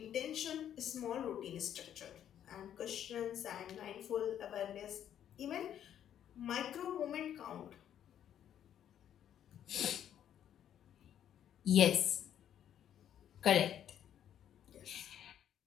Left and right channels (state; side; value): quieter; right; 10.1 dB